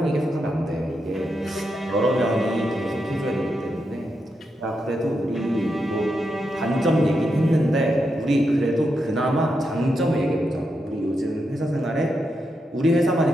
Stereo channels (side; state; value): both; normal; correlation 0.84